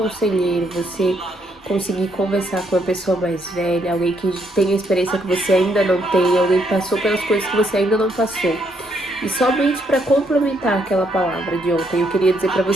você conseguir conversar com uma pessoa mais velha, alguém que tem experiência que você ainda não tem, alguém que passou pelas coisas que você ainda não passou. E somente para complementar aquela palavra de ontem, eu queria dizer para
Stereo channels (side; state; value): both; normal; correlation 0.73